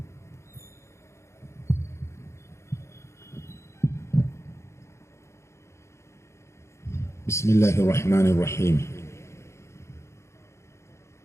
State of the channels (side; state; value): right; late; 0.13 ms